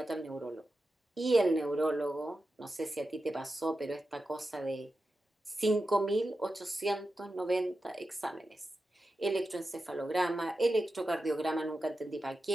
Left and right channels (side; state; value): both; normal; correlation 0.91